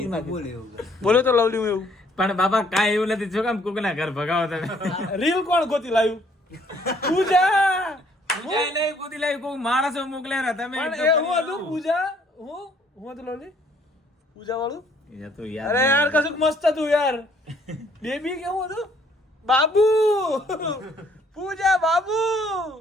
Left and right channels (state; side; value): normal; both; correlation 0.63